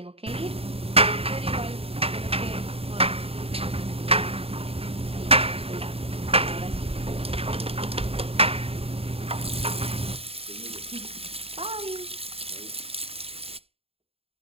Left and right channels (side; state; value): left; late; 0.28 ms